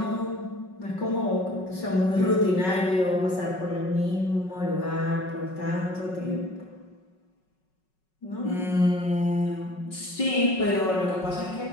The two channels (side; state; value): right; late; 5.4 ms